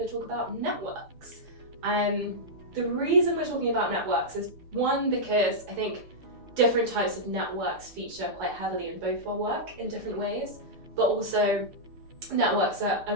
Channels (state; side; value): late; left; 6.7 ms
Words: to talk about networks. The reason we're talking about networks is one, because I think different types of networks feature quite heavily in both our work in different ways, but also networks are a